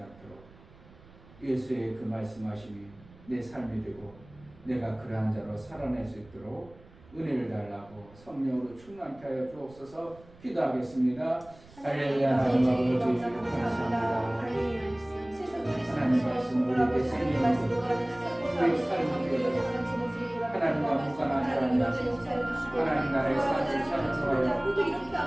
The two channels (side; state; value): right; noise; rumble, 24 dB below the sound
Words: 않도록 예수의 그 말씀하심이 내 삶이 되고 내가 그러한 자로 살아낼 수 있도록 은혜를 달라고 성령으로 충만케 하여 주옵소서. 기도하겠습니다. 할렐루야. 하나님 아버지 감사합니다. 하나님 말씀 우리에게 생명이고 우리의 삶이 되어 하나님과 무관한 사람이 하나님 나라의 삶을